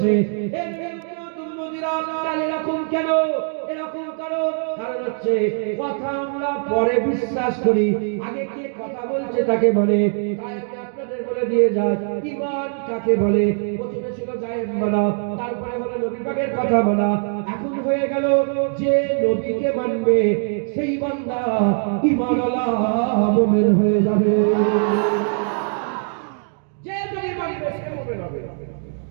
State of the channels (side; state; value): left; silent; 55 dB below the other